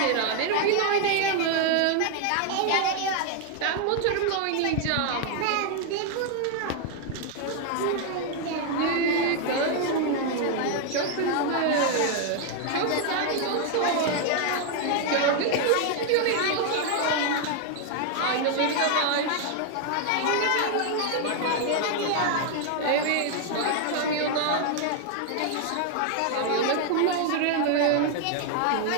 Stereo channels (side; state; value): both; different; correlation 0.00